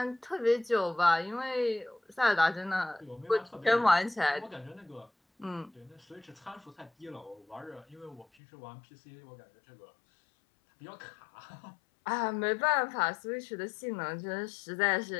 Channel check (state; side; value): drops out; right; at 8.2 s